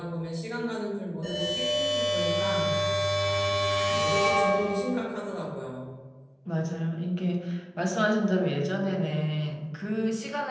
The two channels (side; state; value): both; identical; correlation 1.00